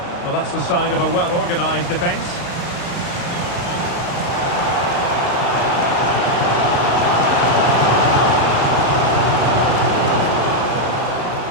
Well, that's the sign of a well-organised defence.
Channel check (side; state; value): right; late; 35 ms